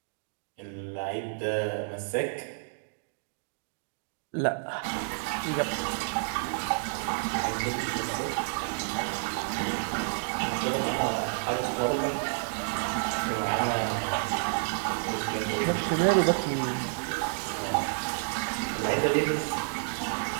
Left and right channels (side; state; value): left; silent; digital silence